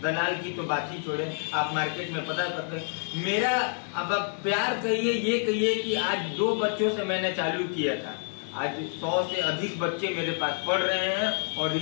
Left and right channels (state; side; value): silent; right; 59 dB below the other